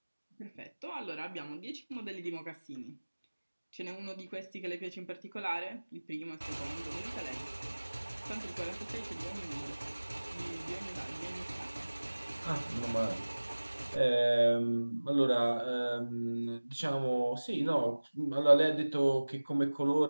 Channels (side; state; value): both; inverted; correlation -1.00